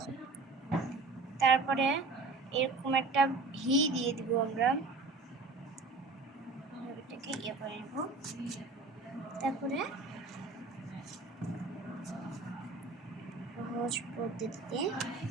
তারপরে এরকম একটা ভি দিয়ে দিব। আমরা এটাকে ইয়ে করে নেব। তারপরে সহজ পদ্ধতিতে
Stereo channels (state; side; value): quieter; left; 3.8 dB